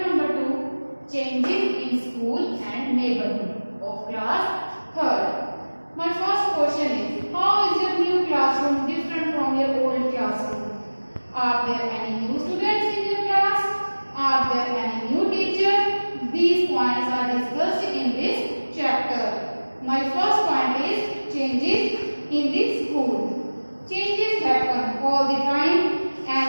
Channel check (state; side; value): inverted; both; correlation -1.00